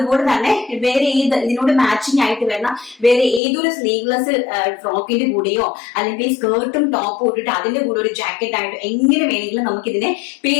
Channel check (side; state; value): right; drops out; at 3.4 s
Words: തന്നെ വേറെ ഇതിനോട് മാച്ചിങ് ആയിട്ട് വരുന്ന വേറെ ഏതൊരു സ്ലീവ്ലെസ് ഫ്രോക്കിന്റെ കൂടെയോ അല്ലെങ്കിൽ സ്കേർട്ടും ടോപ്പും ഇട്ടിട്ട് അതിന്റെ കൂടെ ഒരു ജാക്കറ്റ് ആയിട്ട് എങ്ങനെ വേണമെങ്കിലും നമുക്ക് ഇതിനെ